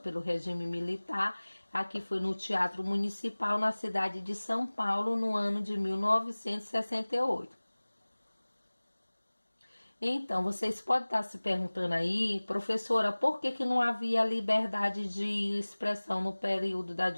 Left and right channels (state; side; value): inverted; both; correlation -1.00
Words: regime militar. Aqui foi no Teatro Municipal, na cidade de São Paulo, no ano de 1968. Então, vocês podem estar se perguntando aí, professora, por que não havia liberdade de expressão no período da